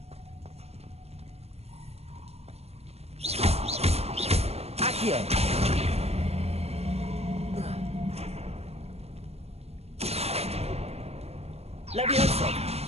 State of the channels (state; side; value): late; left; 0.30 ms